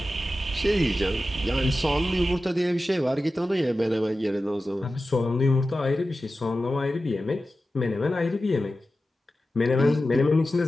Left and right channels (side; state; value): both; normal; correlation 0.93